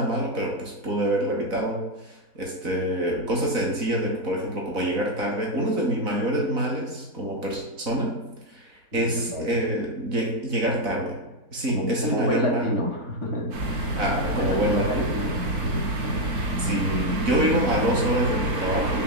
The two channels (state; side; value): late; left; 4.0 ms